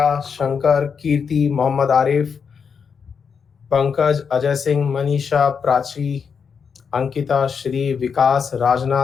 Shankar, Kirti, Mohammad Arif, Pankaj, Ajay Singh, Manisha, Prachi, Ankita, Shri, Vikas,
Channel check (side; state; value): right; quieter; 6.3 dB